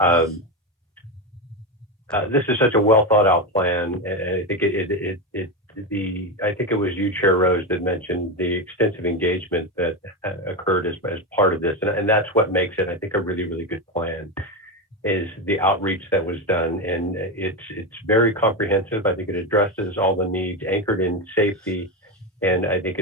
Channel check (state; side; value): normal; both; correlation 0.14